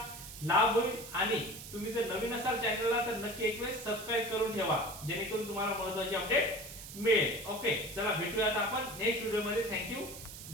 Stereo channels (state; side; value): noise; right; hiss, 12 dB below the sound